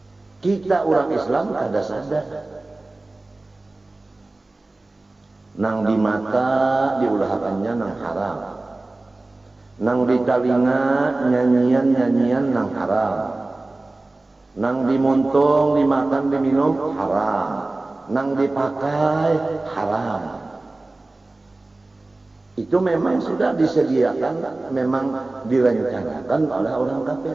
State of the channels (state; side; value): quieter; left; 3.0 dB